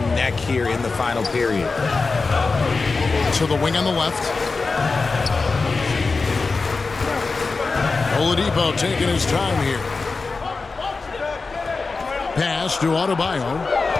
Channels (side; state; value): right; quieter; 4.1 dB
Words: neck here in the final period. To the wing on the left. Oladipo taking his time here. Pass to Adebayo.